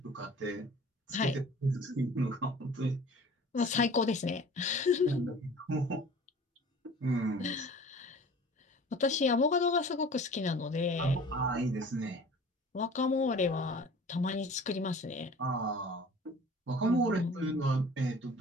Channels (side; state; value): both; normal; correlation 0.45